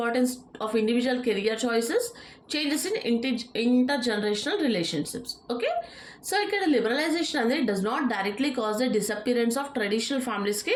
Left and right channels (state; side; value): identical; both; correlation 1.00